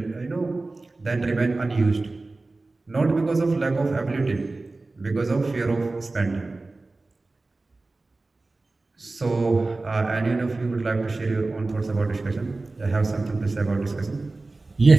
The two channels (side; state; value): left; quieter; 3.3 dB